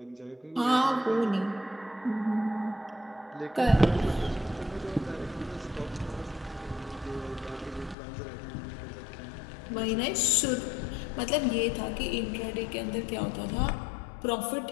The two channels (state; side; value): drops out; right; at 8.0 s